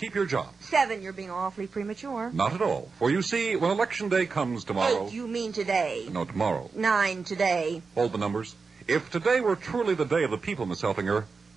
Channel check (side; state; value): left; quieter; 4.7 dB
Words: your job. 7. You're being awfully premature. Not at all. For you see, when Election Day comes tomorrow... 8. You mean today. No, tomorrow. 9. Today. Hold the numbers. If today were truly the day of the people, Miss Helfinger,